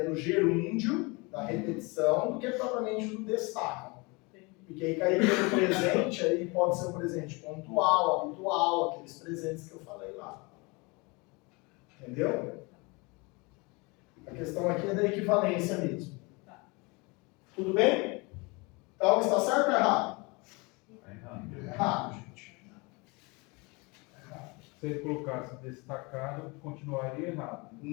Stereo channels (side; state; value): right; quieter; 27.4 dB